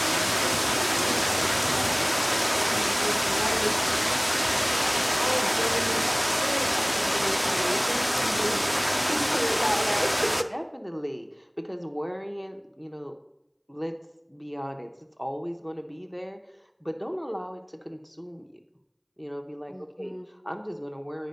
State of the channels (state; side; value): identical; both; correlation 1.00